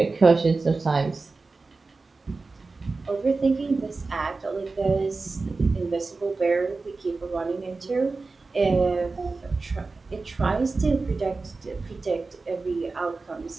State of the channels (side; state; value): left; quieter; 3.8 dB